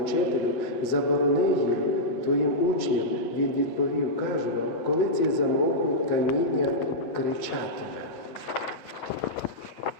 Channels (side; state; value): right; late; 8.1 ms